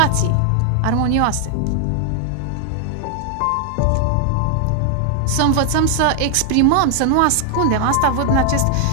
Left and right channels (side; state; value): both; different; correlation 0.00